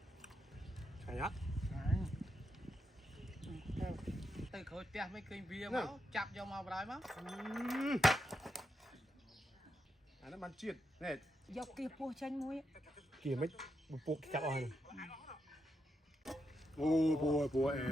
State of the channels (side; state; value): both; normal; correlation 0.83